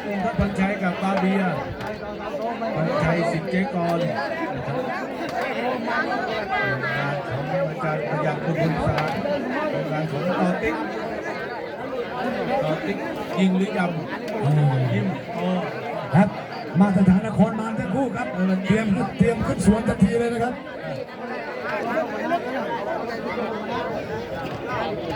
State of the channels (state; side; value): identical; both; correlation 1.00